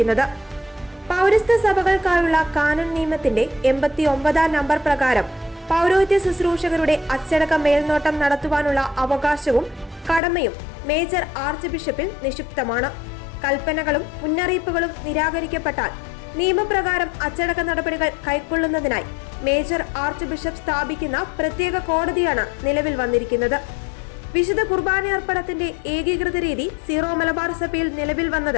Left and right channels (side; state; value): right; drops out; at 10.2 s